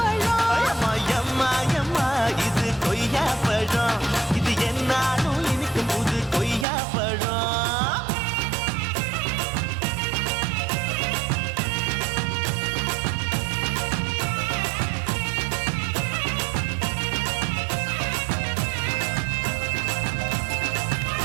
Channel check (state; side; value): drops out; left; at 6.7 s